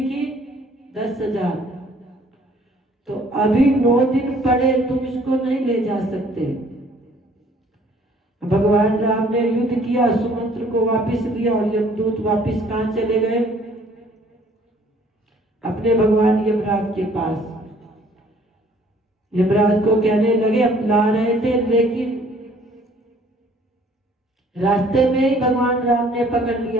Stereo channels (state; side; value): normal; both; correlation 0.58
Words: 10,000। तो अभी 9 दिन पड़े, तुम इसको नहीं ले जा सकते। भगवान राम ने युद्ध किया, सुमंत्र को वापिस लिया और यमदूत वापिस कहां चले गए? अपने भगवान यमराज के पास। यमराज को कहने लगे हम ला रहे थे, लेकिन रास्ते में ही भगवान राम ने पकड़